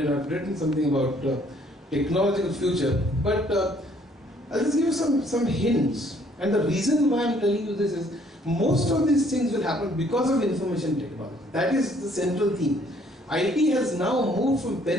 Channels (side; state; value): both; normal; correlation 0.63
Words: I've written something about technological future. But I'll just give you some hints. And the reason why I'm telling you this is most of these things will happen because of information technology. That is the central theme. IT has now moved from